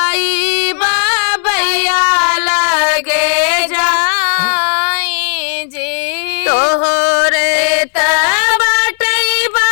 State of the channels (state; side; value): silent; right; digital silence